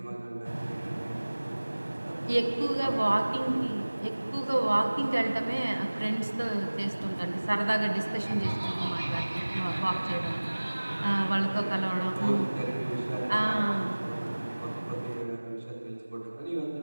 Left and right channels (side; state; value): both; inverted; correlation -1.00